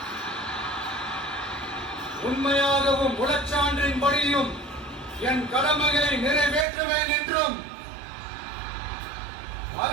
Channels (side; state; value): left; drops out; at 6.7 s